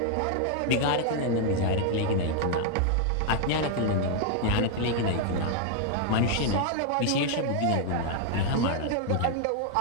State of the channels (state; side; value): different; both; correlation 0.00